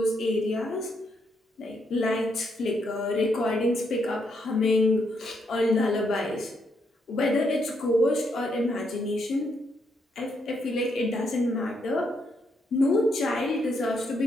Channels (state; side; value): normal; both; correlation 0.77